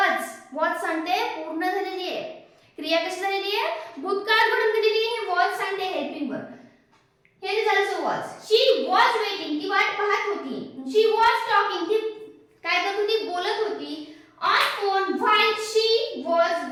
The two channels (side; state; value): both; identical; correlation 1.00